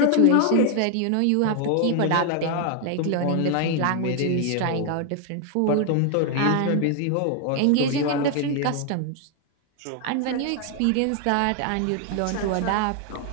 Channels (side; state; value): both; different; correlation 0.00